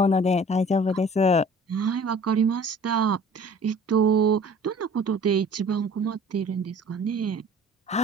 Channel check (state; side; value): normal; both; correlation 0.48